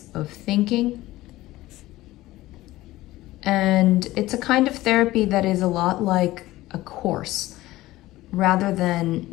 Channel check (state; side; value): quieter; right; 17.2 dB